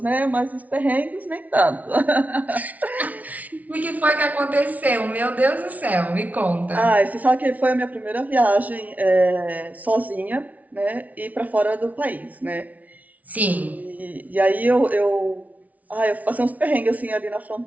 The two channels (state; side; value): late; left; 0.072 ms